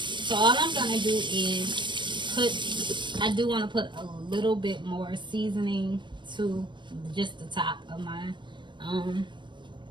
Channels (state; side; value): late; left; 0.23 ms